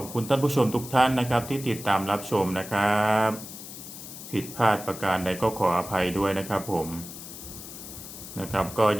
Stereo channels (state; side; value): noise; left; hiss, 12 dB below the sound